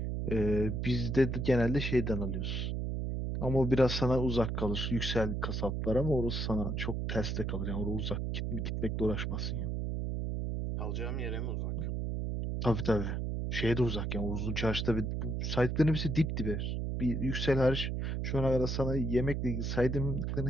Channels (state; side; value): noise; right; hum, 1 dB below the sound